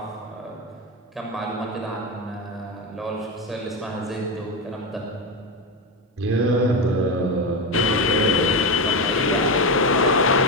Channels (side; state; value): both; normal; correlation 0.13